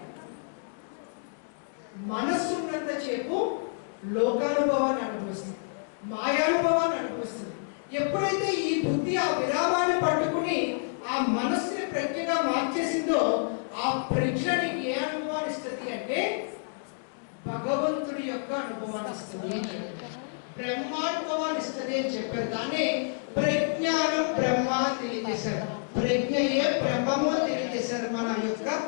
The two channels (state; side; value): silent; right; digital silence